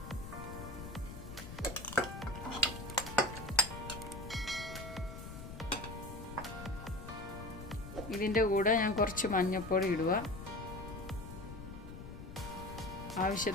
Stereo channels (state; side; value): noise; left; rumble, 10 dB below the sound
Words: ഇതിൻ്റെ കൂടെ ഞാൻ കുറച്ച് മഞ്ഞൾപ്പൊടി ഇടുക,